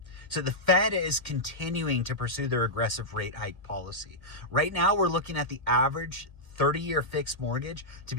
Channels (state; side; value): late; right; 1.8 ms